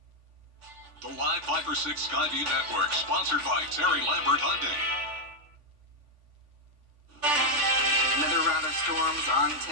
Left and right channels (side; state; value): left; late; 3.5 ms